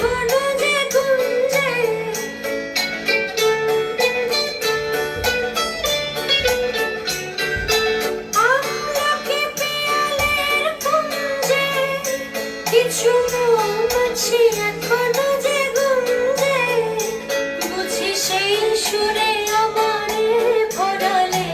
যে গুঞ্জে, আমলকি পিয়ালের কুঞ্জে, কিছু মৌমাছি এখনো যে গুঞ্জে, বুঝি সেই সুরে আমারে ভরালে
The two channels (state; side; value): identical; both; correlation 1.00